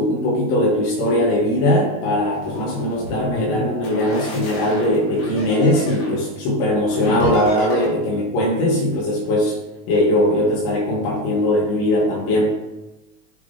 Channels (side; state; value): right; late; 19 ms